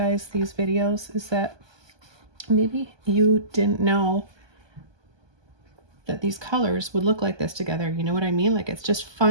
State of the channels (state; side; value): late; left; 1.2 ms